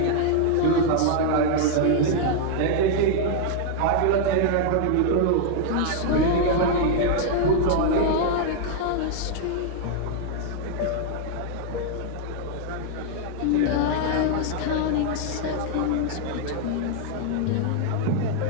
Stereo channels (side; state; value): both; different; correlation 0.00